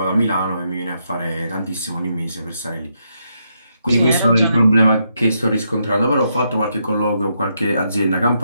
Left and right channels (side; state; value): both; inverted; correlation -0.79